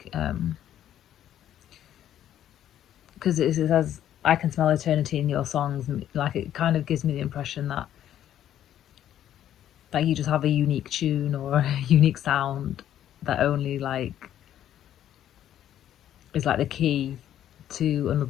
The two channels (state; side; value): quieter; right; 11.2 dB